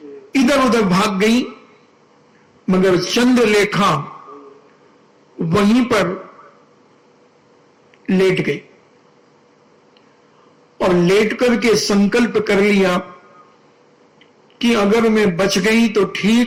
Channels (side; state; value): both; identical; correlation 1.00